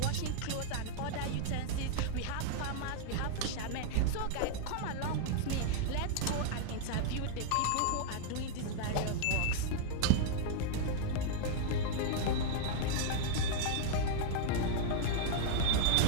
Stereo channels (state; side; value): different; both; correlation -0.01